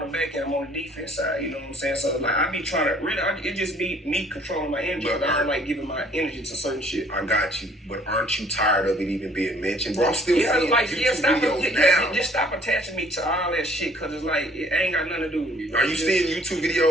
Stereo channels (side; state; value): both; normal; correlation 0.59